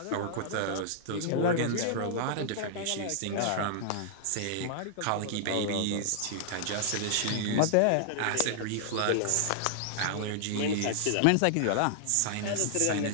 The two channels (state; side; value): different; both; correlation -0.01